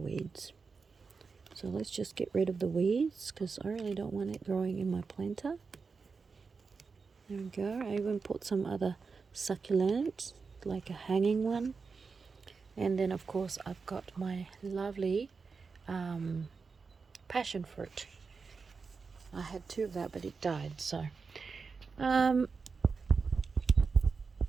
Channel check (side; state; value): left; quieter; 4.9 dB